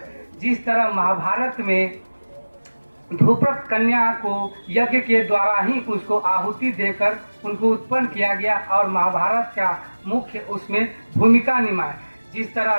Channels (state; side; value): inverted; both; correlation -1.00